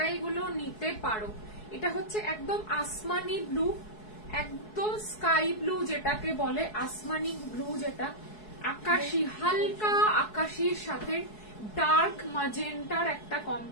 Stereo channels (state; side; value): late; right; 4.7 ms